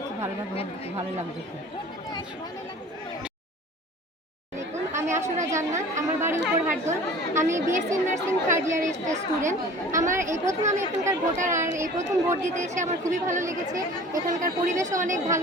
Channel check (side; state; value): both; normal; correlation 0.43